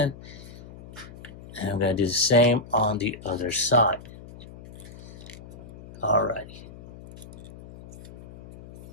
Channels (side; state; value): left; noise; hum, 17 dB below the sound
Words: And I'm going to do the same on the other side. Alrighty.